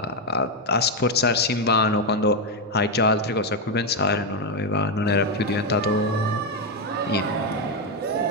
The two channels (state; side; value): normal; both; correlation 0.05